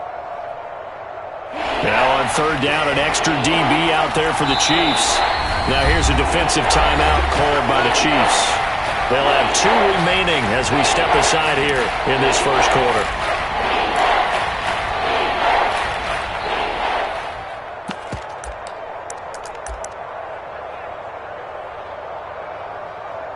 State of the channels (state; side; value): identical; both; correlation 1.00